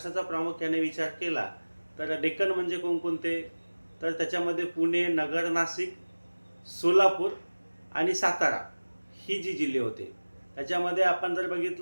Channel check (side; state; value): both; inverted; correlation -1.00